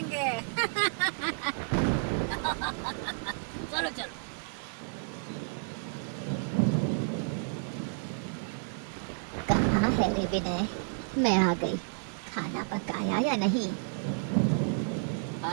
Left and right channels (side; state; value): left; silent; digital silence